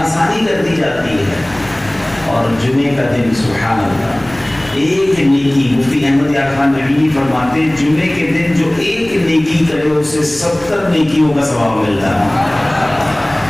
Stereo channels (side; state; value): left; noise; rumble, 22 dB below the sound